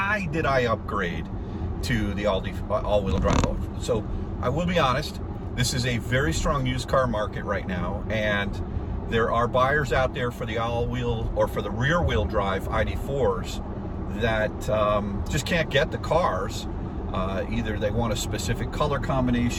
did I upgrade to the all-wheel drive? So I will be honest, this is a very strong used car market right now, and there are buyers out there for the all-wheel or for the rear-wheel drive ID.4s that just can't get the cars. Either they want a specific color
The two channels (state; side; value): identical; both; correlation 1.00